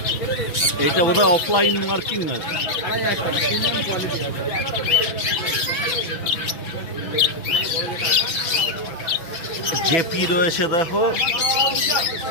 এইটা বোধহয় অফলাইন মার্কিং আছে। জেপি রয়েছে দেখো।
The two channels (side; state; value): right; late; 6.0 ms